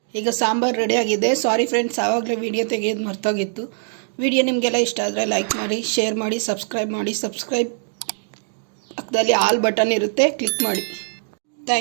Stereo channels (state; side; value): silent; left; digital silence